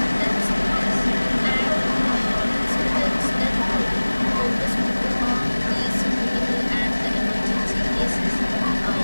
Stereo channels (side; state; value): both; inverted; correlation -1.00